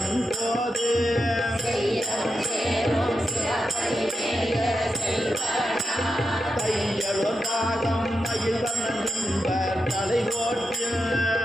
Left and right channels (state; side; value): normal; both; correlation 0.88